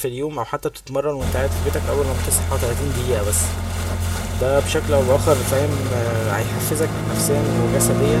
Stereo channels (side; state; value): both; identical; correlation 1.00